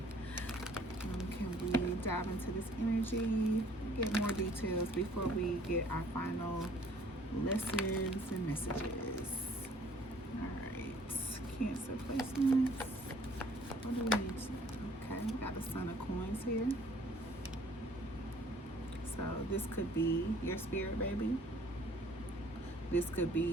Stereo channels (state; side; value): normal; both; correlation 0.58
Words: Can we dive into this energy, get more details before we get our final lessons and messages? All right, Cancer placements. What do we need to know? Okay, we got the Son of Coins here. So this could be your spirit baby. This could